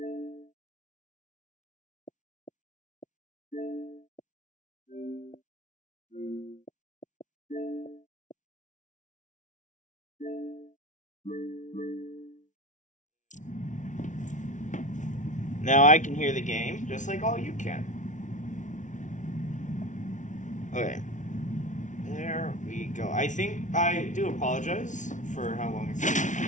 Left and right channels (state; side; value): late; right; 0.37 ms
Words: Now I can hear the game just like all you can. Okay. There we go. I think I do apologize for how long it's taken.